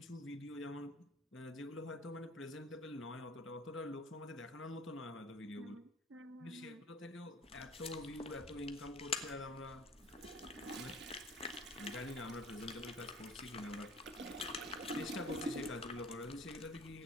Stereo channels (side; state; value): both; normal; correlation 0.48